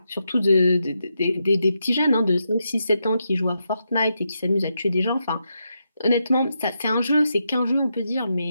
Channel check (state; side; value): inverted; both; correlation -0.84